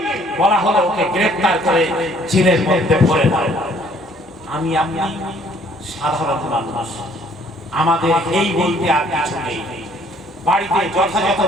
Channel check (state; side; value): normal; both; correlation 0.60